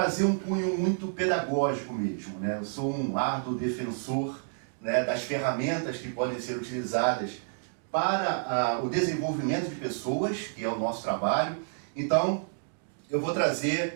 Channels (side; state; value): left; silent; digital silence